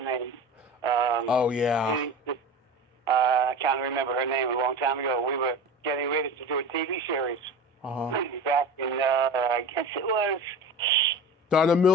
name? Oh, yeah. I can't remember her name. A long time ago, we were getting ready to do a TV series. Back in, I guess it was... Donna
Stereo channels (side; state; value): both; normal; correlation 0.32